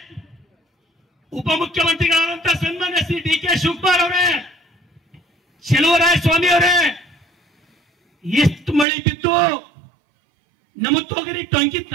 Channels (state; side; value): drops out; left; at 8.8 s